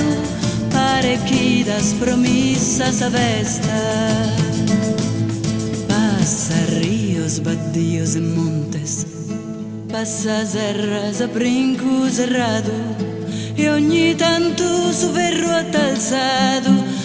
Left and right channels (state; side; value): identical; both; correlation 1.00